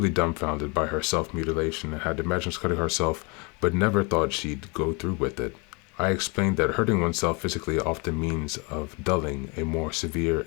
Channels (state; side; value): quieter; right; 30.5 dB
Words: dumbfounded by her self-mutilation and had imagined cutting herself, but never thought she'd go through with it. I explained that hurting oneself physically often means of dulling a more severe